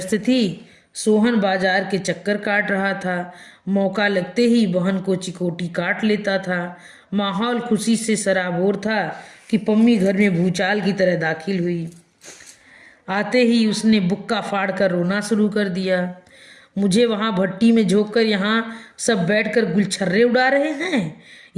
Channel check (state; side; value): identical; both; correlation 1.00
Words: थी। सोहन बाजार के चक्कर काट रहा था। मौका लगते ही बहन को चिकोटी काट लेता था। माहौल खुशी से सराबोर था कि पम्मी घर में भूचाल की तरह दाखिल हुई। आते ही उसने बुक्का फाड़ कर रोना शुरू कर दिया। मुझे वहाँ भट्टी में झोंककर यहाँ सब बैठकर गुलछर्रे उड़ा रहे हैं।